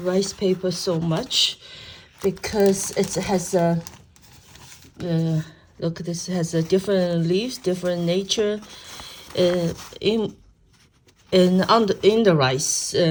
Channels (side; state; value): both; identical; correlation 1.00